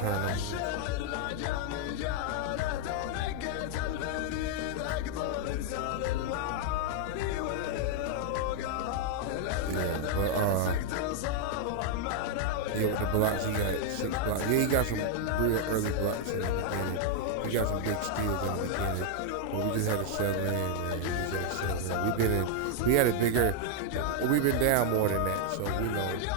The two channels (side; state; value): both; different; correlation 0.00